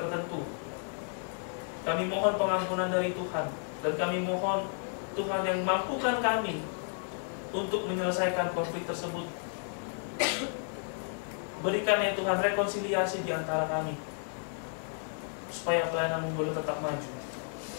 kami mohon pengampunan dari Tuhan, dan kami mohon Tuhan yang mampukan kami untuk menyelesaikan konflik tersebut. Berikan ya Tuhan rekonsiliasi di antara kami, supaya pelayanan boleh tetap maju.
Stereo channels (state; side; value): silent; right; 56 dB below the other